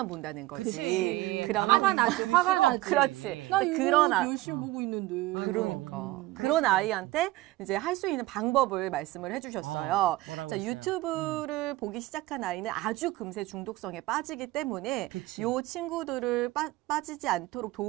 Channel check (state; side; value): quieter; left; 18.0 dB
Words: 본다는 거지. 그치. 그러면 화가 나지, 화가 나지. 그렇지. 나 이거 그런 열심히 보고 있는데. 그러니까 그런 아이한테 이제 할 수 있는 방법을 말씀을 해주셨어요. 뭐라고 자, 했어요? 유튜브를 보기 시작한 아이는 아주 금세 중독성에 빠지기 때문에 그치. 요 친구들을 빠지지 않도록